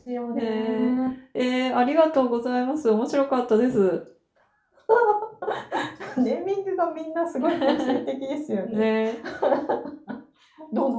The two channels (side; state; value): both; identical; correlation 1.00